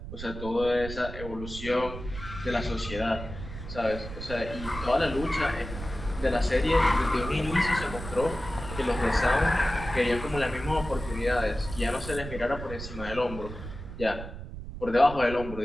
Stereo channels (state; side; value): noise; right; rumble, 10 dB below the sound